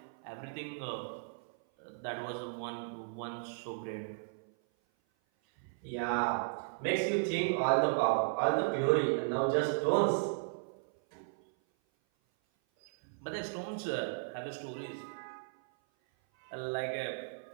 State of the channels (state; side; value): silent; left; 54 dB below the other